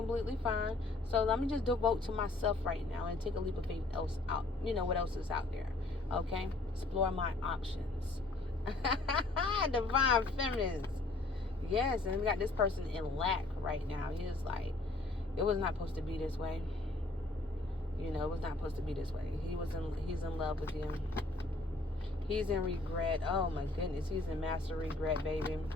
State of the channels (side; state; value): right; quieter; 3.0 dB